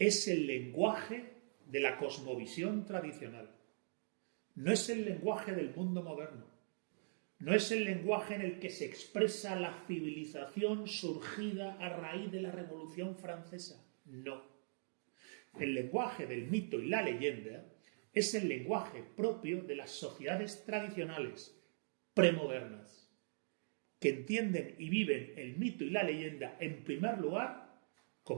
el lenguaje de la cosmovisión tradicional. No es el lenguaje del mundo moderno. No es el lenguaje en el que se expresa la civilización surgida a raíz de la Revolución Francesa. No. El lenguaje del mito y la leyenda es el lenguaje propio de las sociedades tradicionales, premodernas, que entienden y viven el mito y la leyenda, en primer lugar,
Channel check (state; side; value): silent; left; digital silence